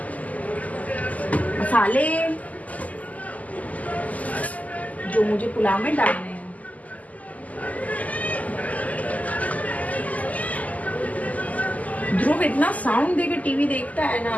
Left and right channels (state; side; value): late; right; 0.076 ms